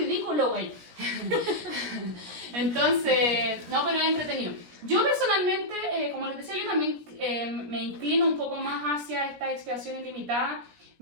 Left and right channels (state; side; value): late; left; 17 ms